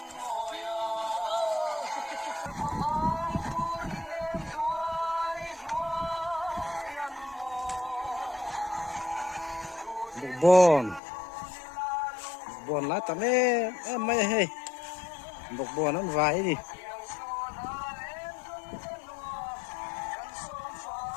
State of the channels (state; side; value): drops out; right; at 11.0 s